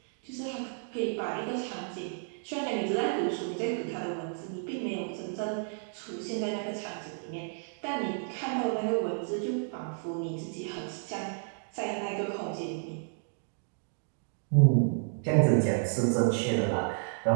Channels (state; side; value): silent; left; digital silence